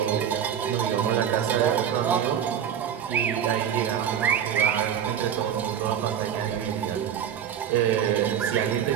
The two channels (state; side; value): quieter; left; 9.1 dB